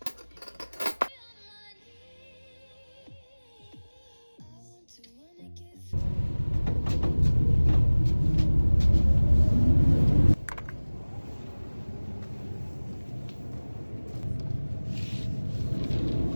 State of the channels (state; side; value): inverted; both; correlation -1.00